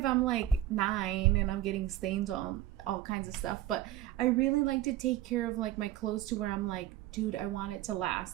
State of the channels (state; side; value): quieter; left; 13.3 dB